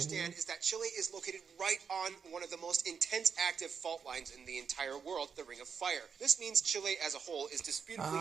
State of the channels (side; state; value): left; quieter; 6.4 dB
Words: you. understand is that Chile is located right on one of the most intense active fault lines in the entire world, the Ring of Fire. This means Chile as a whole is disputably